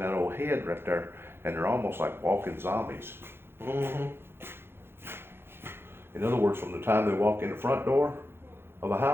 old head right there, and they're almost like walking zombies. Mm-hmm. In other words, from the time they walk in the front door of a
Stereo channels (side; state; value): left; late; 0.11 ms